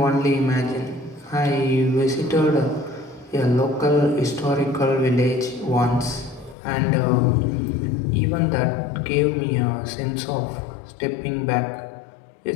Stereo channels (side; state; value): right; drops out; at 6.6 s